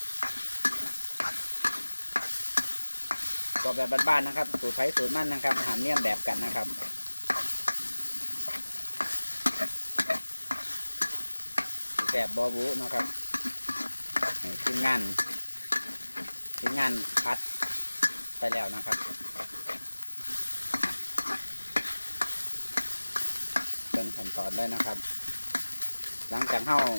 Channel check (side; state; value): both; inverted; correlation -1.00